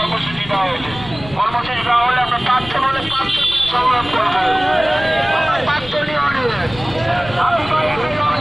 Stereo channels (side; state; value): left; noise; rumble, 16 dB below the sound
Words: দেওয়া হয়েছে। কর্মসূচি দেওয়া হলে আমরা পাঁচশো বলে পাঁচশো সংগ্রাম করবো। পাঁচশোটি অনেক আদিবাসী